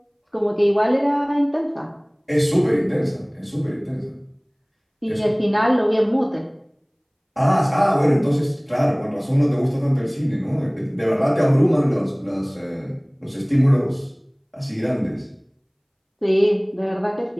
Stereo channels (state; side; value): identical; both; correlation 1.00